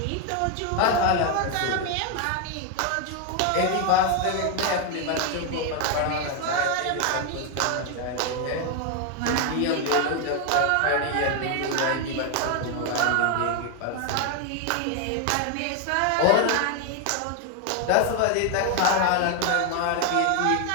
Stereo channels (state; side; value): different; both; correlation 0.01